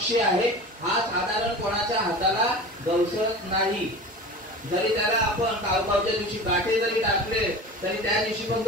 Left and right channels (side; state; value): both; normal; correlation 0.34